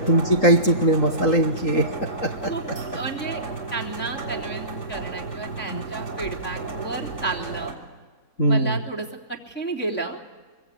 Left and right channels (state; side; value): late; right; 3.8 ms